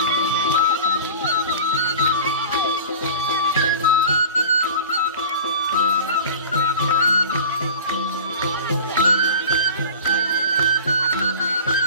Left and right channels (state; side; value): inverted; both; correlation -0.38